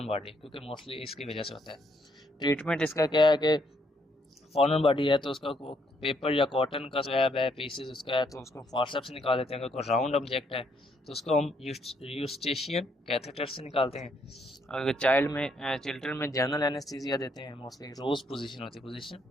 बॉडी, क्योंकि मोस्टली इसकी वजह से होता है। ट्रीटमेंट इसका क्या है कि फॉरेन बॉडी है तो उसका पेपर या कॉटन का स्वैब है, पीसेस उसका है, तो उसको फॉर्सेप्स से निकाल देते हैं। अगर कोई राउंड ऑब्जेक्ट है तो उसको हम यूस्टेशियन कैथेटर से निकालते हैं। अगर चिल्ड्रन में जनरल एनेस्थीसिया देते हैं, मोस्टली रोज पोजीशन होती है,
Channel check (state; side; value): normal; both; correlation 0.72